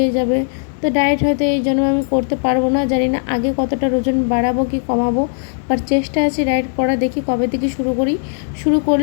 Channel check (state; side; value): silent; right; 68 dB below the other